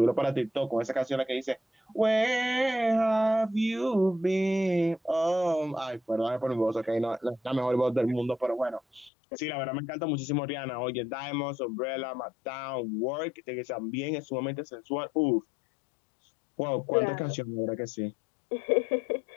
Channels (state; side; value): drops out; right; at 9.1 s